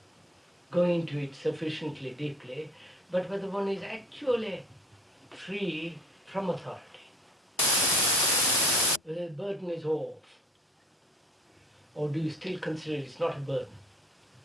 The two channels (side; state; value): both; normal; correlation 0.54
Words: going into it sufficiently deeply, but whether one is actually free from authority, whether the burden is off, or do you still consider it's not a burden?